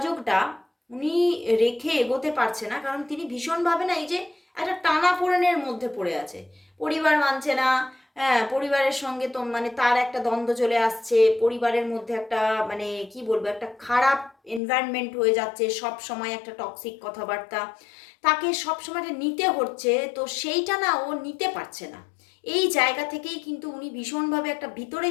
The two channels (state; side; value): drops out; right; at 14.6 s